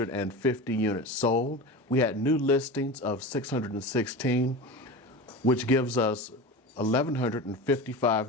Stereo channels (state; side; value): normal; both; correlation 0.29